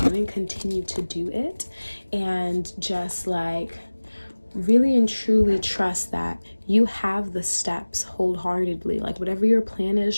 continue to do it, and just like really and truly trust that you have the steps wholeheartedly. Like whatever your plan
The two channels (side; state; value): both; inverted; correlation -1.00